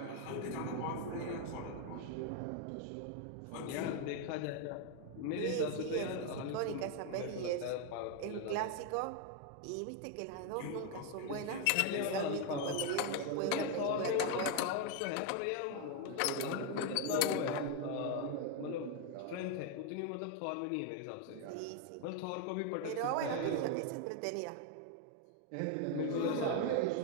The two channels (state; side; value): different; both; correlation 0.01